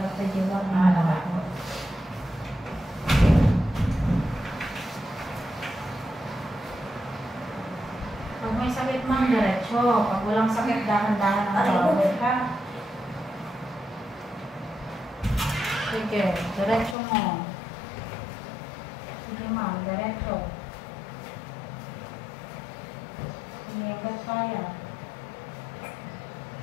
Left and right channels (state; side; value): drops out; right; at 16.9 s